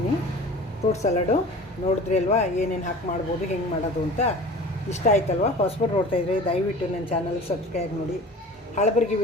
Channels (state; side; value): normal; both; correlation 0.40